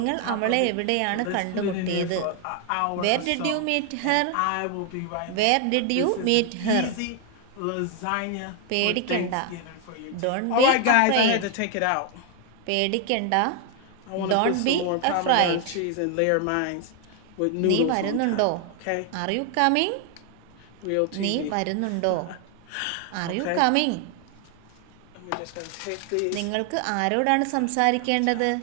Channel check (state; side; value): different; both; correlation 0.00